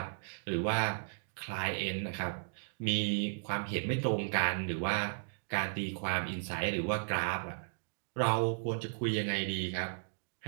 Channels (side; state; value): left; silent; digital silence